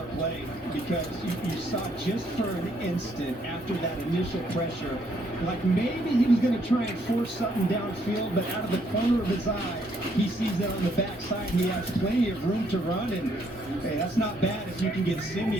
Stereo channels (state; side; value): normal; both; correlation 0.70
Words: play because you saw just for an instant after that initial pressure, like maybe he was going to try and force something downfield, but out of the corner of his eye, he sees that on the backside. He has plenty of room to run, and hey, that's not bad if you can get